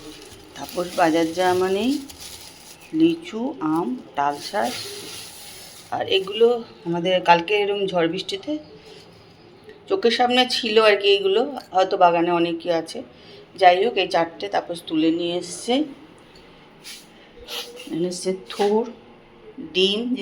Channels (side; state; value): both; identical; correlation 1.00